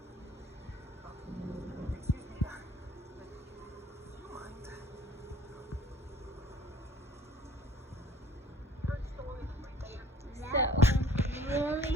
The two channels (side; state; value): both; normal; correlation 0.53